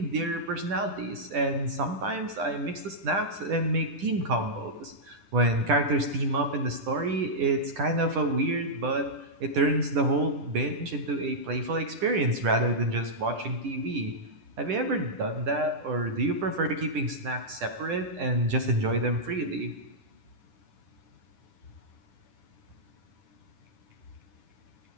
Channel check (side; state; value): left; late; 10 ms